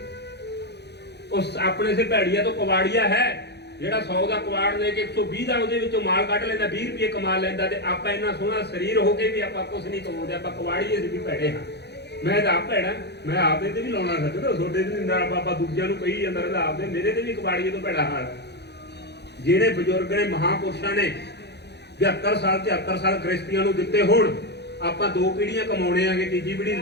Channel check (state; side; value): late; right; 0.49 ms